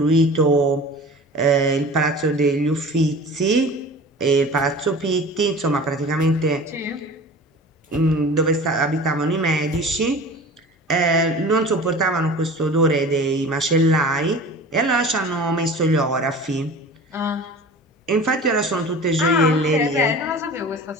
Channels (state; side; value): normal; both; correlation 0.39